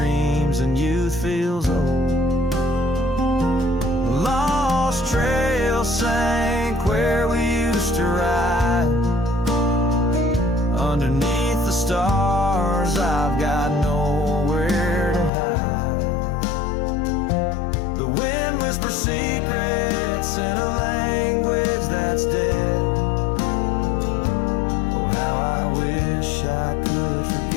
and youth feels old. Lost trail sank where we used to ride. Underneath the stars, I've got nowhere to hide. The wind whispers secrets in a language that's dead. Oh, how I wish I could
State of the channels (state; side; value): drops out; right; at 15.3 s